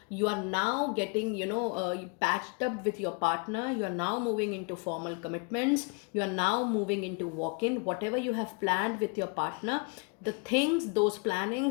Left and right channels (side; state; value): right; quieter; 35.2 dB